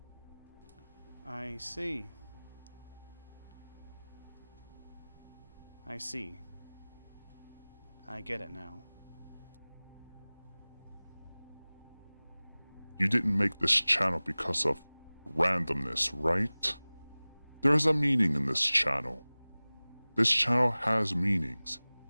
I see. I see. I get it now. You didn't make this channel because of randomness, right? There's a meaning in this channel. This channel has meanings.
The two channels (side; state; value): both; inverted; correlation -0.99